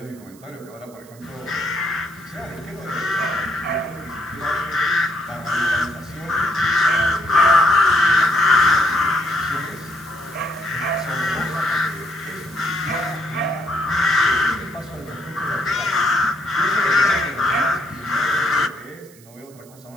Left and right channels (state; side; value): noise; right; hiss, 25 dB below the sound